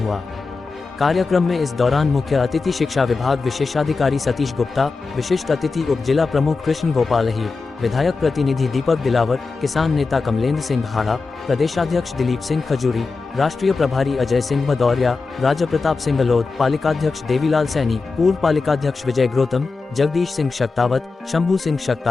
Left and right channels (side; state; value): right; quieter; 4.2 dB